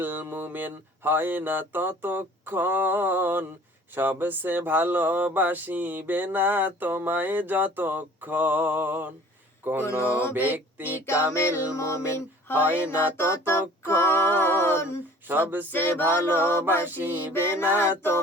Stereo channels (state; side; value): normal; both; correlation 0.49